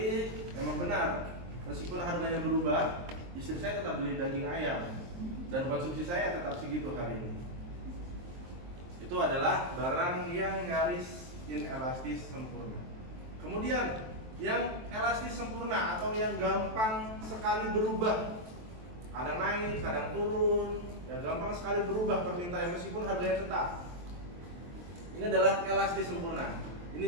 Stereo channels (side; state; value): left; late; 23 ms